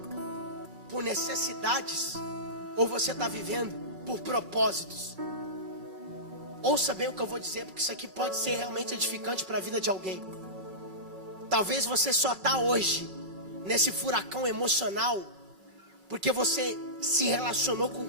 por necessidades, ou você está vivendo por propósitos? Ouça bem o que eu vou dizer, porque isso aqui pode ser realmente edificante para a vida de alguém. Talvez você só está hoje nesse furacão emocional porque você se relacionou com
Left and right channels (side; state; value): left; late; 2.3 ms